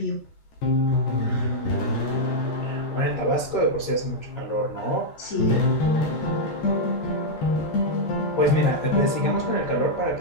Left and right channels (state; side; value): late; right; 13 ms